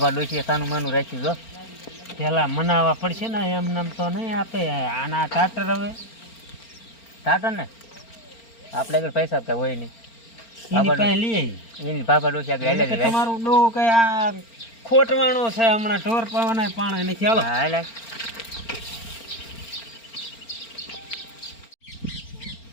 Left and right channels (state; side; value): late; right; 4.4 ms